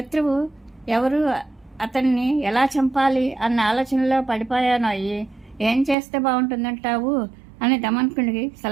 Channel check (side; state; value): left; drops out; at 6.0 s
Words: ఎవరు, అతన్ని ఎలా చంపాలి అన్న ఆలోచనలో పడిపోయాను. అయ్యి ఏం చేస్తే బాగుంటుందంటావు అని దమనకుడికి